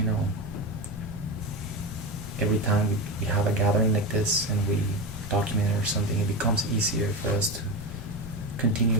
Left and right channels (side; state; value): both; normal; correlation 0.20